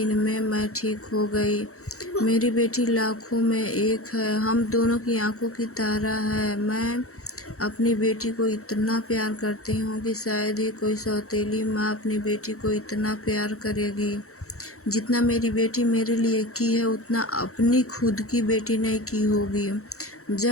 में मैं ठीक हो गई। मेरी बेटी लाखों में एक है। हम दोनों की आंखों की तारा है। मैं अपनी बेटी को इतना प्यार करती हूँ कि शायद ही कोई सौतेली माँ अपनी बेटी को इतना प्यार करेगी जितना मेरी बेटी मेरे लिए की है, उतना अपनी खुद की बेटी ने की होगी।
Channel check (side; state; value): right; late; 0.64 ms